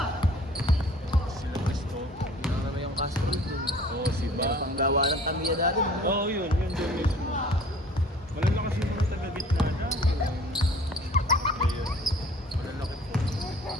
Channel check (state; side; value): normal; both; correlation 0.49